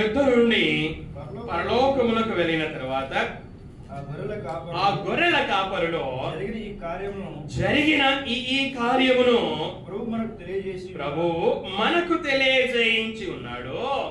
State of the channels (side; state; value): both; identical; correlation 1.00